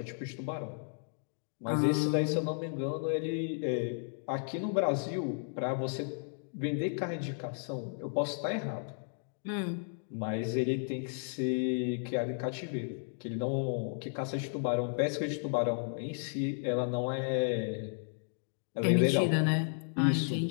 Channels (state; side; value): silent; right; digital silence